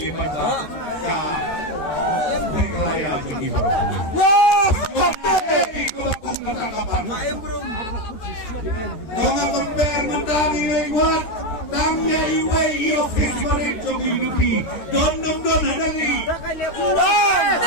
baca. Meghalaya jongi. Ikut bakum ketangkapan. Donga compare mentari lewat. Tangnya iwe Nay office marin jong UDP. Don hadali.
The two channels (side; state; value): right; late; 13 ms